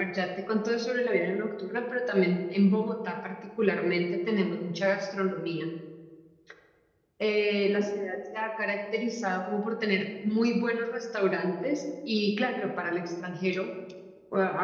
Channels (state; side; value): identical; both; correlation 1.00